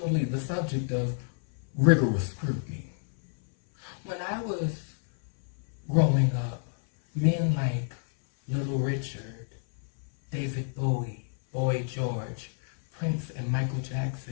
the subject of rigorous scrutiny. When I was growing up, men like Little Richard, David Bowie, Boy George, Prince, and Michael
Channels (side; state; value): right; silent; 59 dB below the other